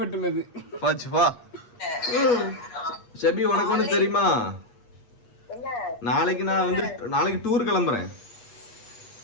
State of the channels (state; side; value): late; right; 8.4 ms